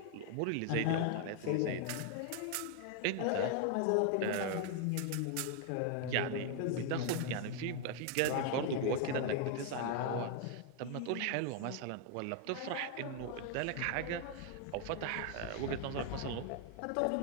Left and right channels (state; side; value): different; both; correlation 0.00